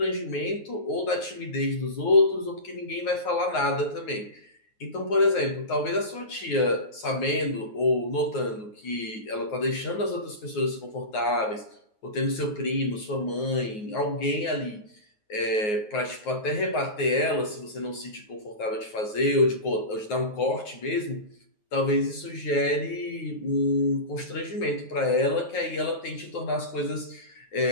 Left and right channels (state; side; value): late; right; 9.4 ms